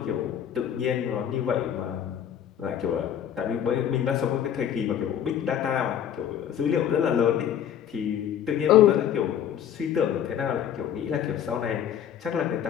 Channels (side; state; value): right; quieter; 9.5 dB